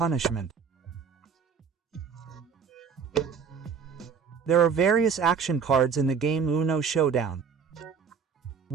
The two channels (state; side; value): quieter; left; 6.3 dB